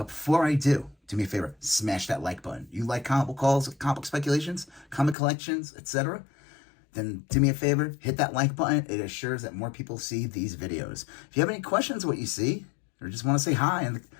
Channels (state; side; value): drops out; right; at 5.2 s